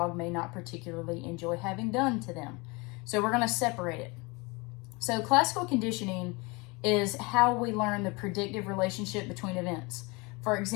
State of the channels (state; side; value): quieter; right; 27.0 dB